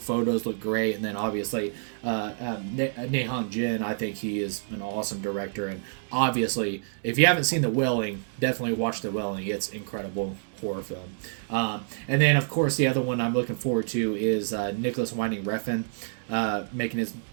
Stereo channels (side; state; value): left; silent; digital silence